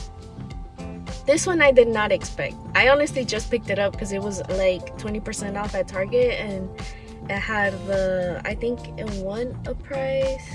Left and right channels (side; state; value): both; identical; correlation 1.00